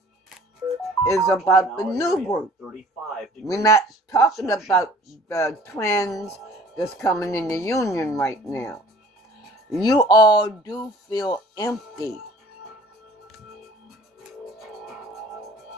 is about the new group. We're not talking about the twins that's coming in the union right now. You all do feel empty.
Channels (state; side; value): normal; both; correlation 0.50